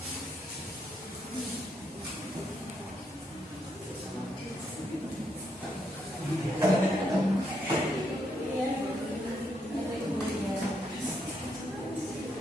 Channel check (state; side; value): normal; both; correlation 0.77